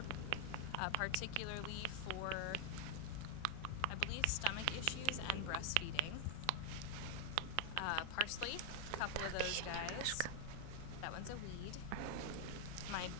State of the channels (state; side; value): different; both; correlation 0.00